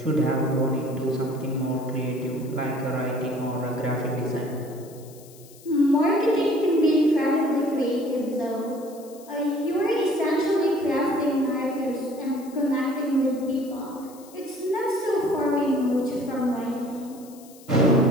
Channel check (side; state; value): left; noise; hiss, 23 dB below the sound